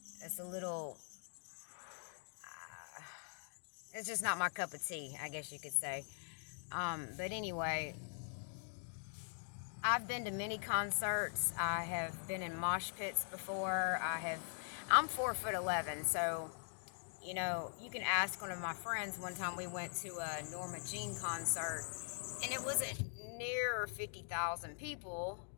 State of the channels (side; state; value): right; silent; digital silence